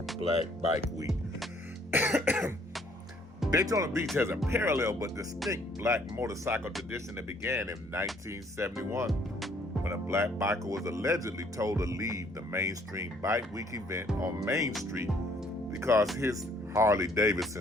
Black Bike Week. Daytona Beach has a parallel but distinct Black motorcycle tradition that began in 1971 when a Black biker was allegedly told to leave the mainstream Bike Week event on Main Street because his Harley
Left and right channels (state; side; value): normal; both; correlation 0.63